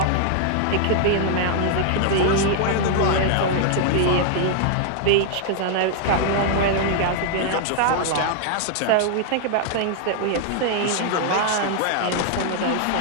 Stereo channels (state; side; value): different; both; correlation 0.00